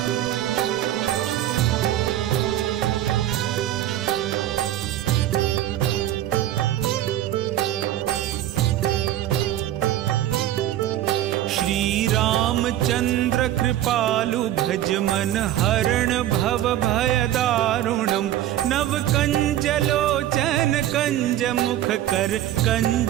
रामचंद्र कृपालु भज मन हरण भव भय दारुणम् नव कंज लोचन कंज मुख कर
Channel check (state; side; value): quieter; left; 12.8 dB